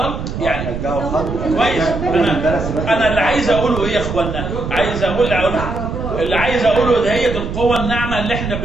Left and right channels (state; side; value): noise; right; rumble, 6 dB below the sound